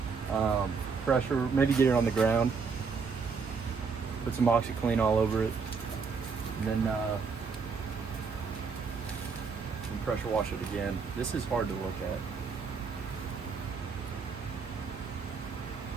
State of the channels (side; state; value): left; quieter; 5.2 dB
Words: Pressure, maybe get it on the ground. Put some OxyClean all over it. And then pressure wash it again. This is hard to look at.